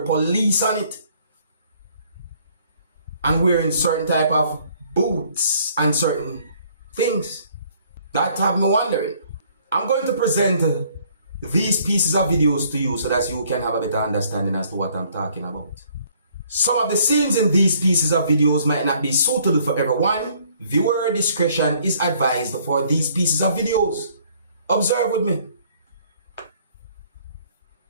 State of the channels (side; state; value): both; inverted; correlation -0.62